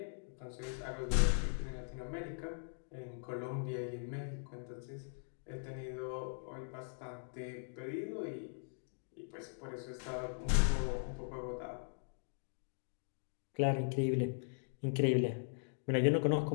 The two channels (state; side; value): silent; right; digital silence